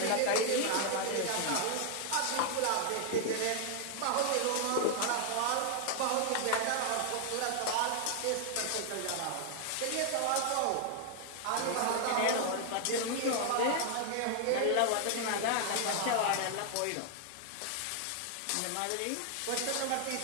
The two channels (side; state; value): both; different; correlation 0.00